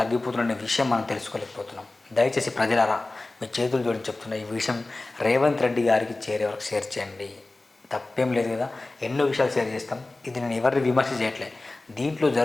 విషయం మనం తెలుసుకోలేకపోతున్నాం. దయచేసి ప్రజలారా మీ చేతులు జోడించి చెప్తున్న ఈ విషయం రేవంత్ రెడ్డి గారికి చేరే వరకు షేర్ చేయండి. తప్పేం లేదు కదా, ఎన్నో విషయాలు షేర్ చేస్తాం. ఇది నేను ఎవరిని విమర్శ చేయట్లే, దీంట్లో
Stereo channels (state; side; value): quieter; right; 3.0 dB